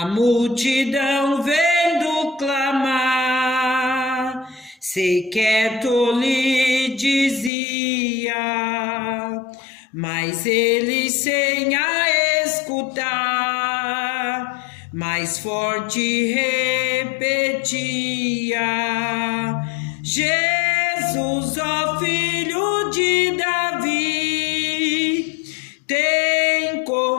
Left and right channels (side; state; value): right; drops out; at 7.5 s